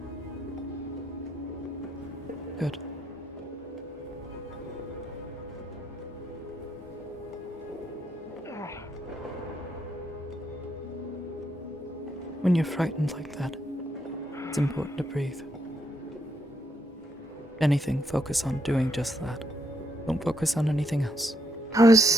Good. When you're frightened like that, it's important to breathe. If anything, focus on doing just that. Don't focus on anything else. That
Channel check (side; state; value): both; normal; correlation 0.76